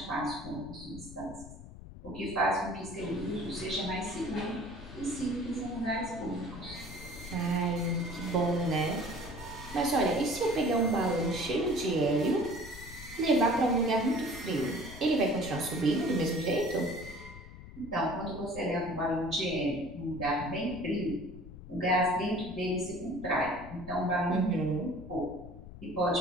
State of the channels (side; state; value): left; noise; rumble, 14 dB below the sound